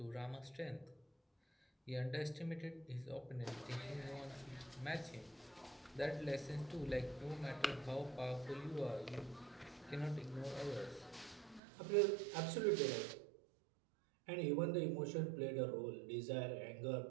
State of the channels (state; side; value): drops out; left; at 11.6 s